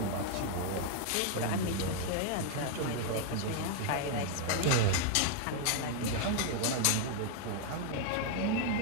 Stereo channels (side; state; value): both; different; correlation 0.00